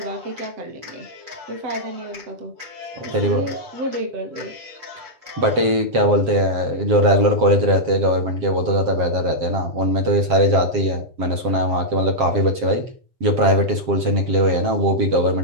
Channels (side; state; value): left; late; 7.5 ms